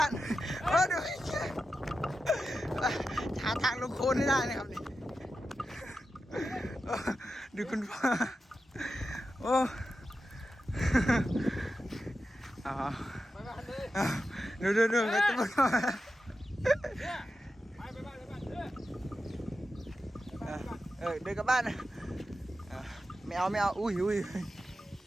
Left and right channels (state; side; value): normal; both; correlation 0.91